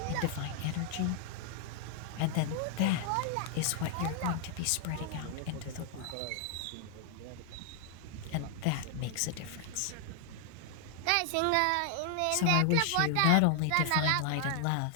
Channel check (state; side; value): different; both; correlation 0.00